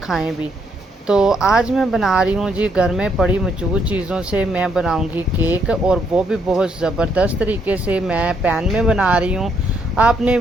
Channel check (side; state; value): both; normal; correlation 0.73